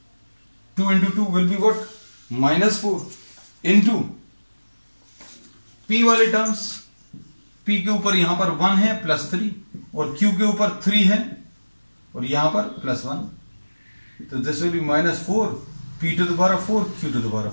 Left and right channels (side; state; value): both; inverted; correlation -1.00